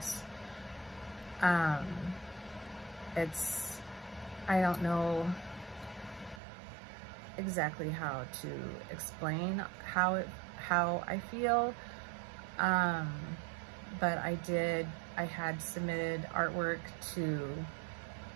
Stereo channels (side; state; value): left; drops out; at 6.4 s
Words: I don't know exactly how to explain how I feel, but I had submitted artwork to